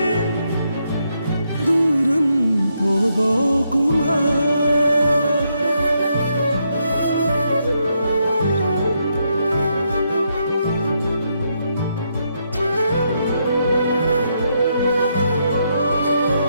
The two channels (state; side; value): inverted; both; correlation -0.79